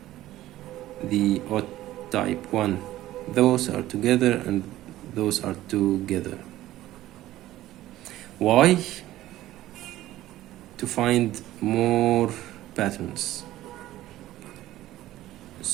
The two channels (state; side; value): quieter; left; 15.0 dB